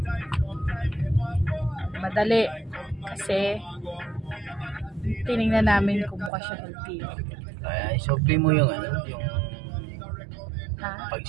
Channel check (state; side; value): drops out; left; at 6.3 s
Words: Madali. Kasi tinignan namin kung mukha siya LTO. Kaya isopli mo yung yung